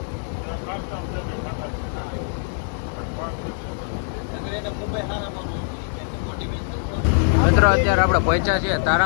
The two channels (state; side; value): silent; right; digital silence